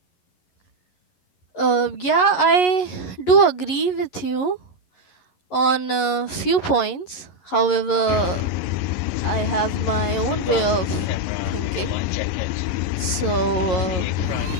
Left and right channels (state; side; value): late; right; 11 ms